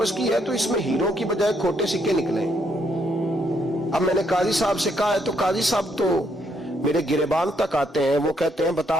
کی ہے تو اس میں ہیروں کی بجائے کھوٹے سکے نکلے. اب میں نے قاضی صاحب سے کہا ہے تو قاضی صاحب تو میرے گریبان تک آتے ہیں، وہ کہتے ہیں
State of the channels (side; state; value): both; normal; correlation 0.74